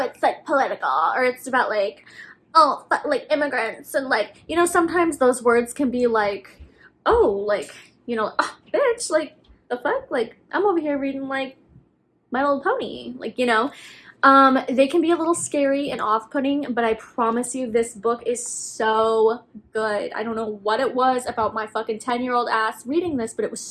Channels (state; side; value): identical; both; correlation 1.00